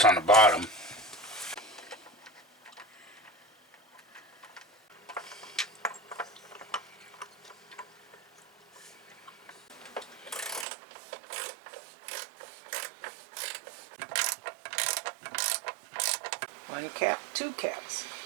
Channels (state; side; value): drops out; left; at 10.7 s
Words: on the bottom. One cap, two caps.